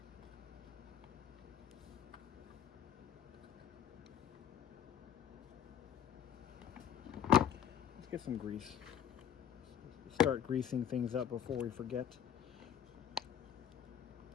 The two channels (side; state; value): right; quieter; 9.5 dB